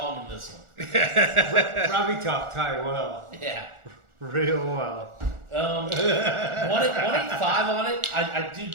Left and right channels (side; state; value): left; late; 1.4 ms